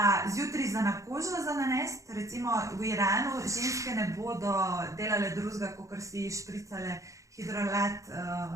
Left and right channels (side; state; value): left; late; 0.15 ms